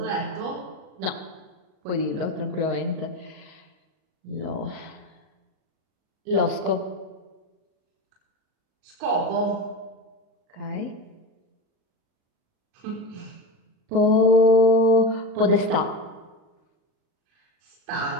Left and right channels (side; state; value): left; late; 38 ms